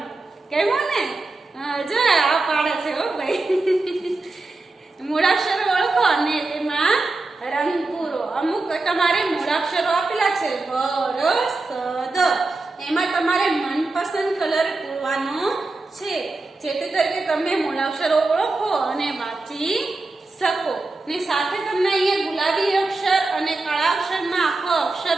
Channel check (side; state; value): left; quieter; 3.3 dB